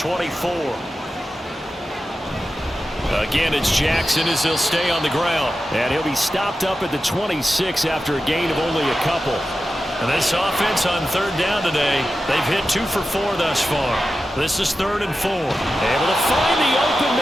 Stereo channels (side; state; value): both; normal; correlation 0.92